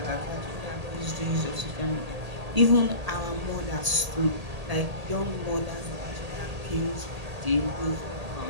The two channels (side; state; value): left; late; 1.8 ms